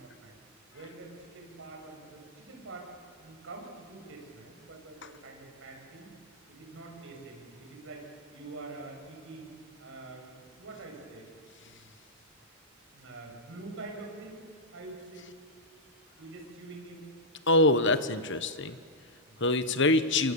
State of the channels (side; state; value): both; normal; correlation -0.06